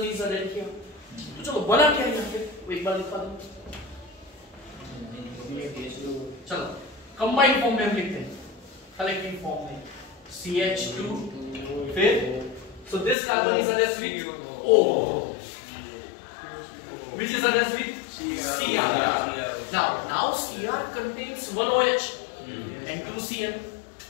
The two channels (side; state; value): right; drops out; at 13.2 s